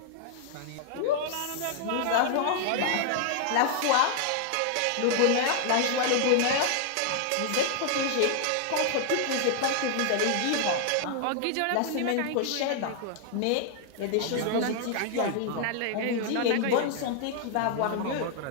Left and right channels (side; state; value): both; different; correlation 0.00